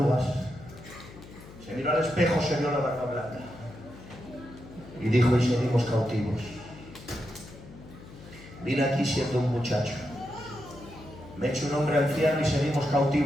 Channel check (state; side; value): noise; left; hum, 18 dB below the sound